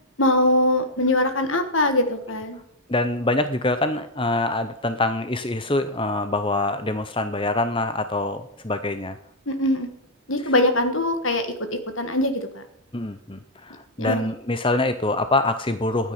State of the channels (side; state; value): both; normal; correlation 0.00